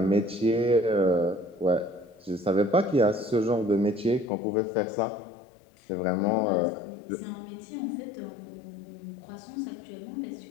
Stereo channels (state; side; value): drops out; right; at 4.3 s